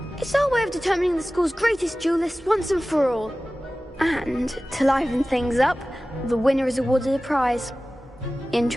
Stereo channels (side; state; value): both; normal; correlation 0.97